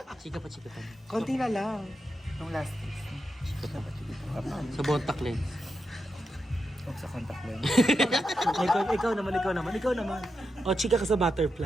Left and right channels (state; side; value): normal; both; correlation 0.87